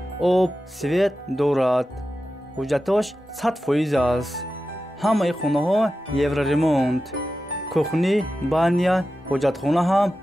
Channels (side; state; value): both; normal; correlation 0.92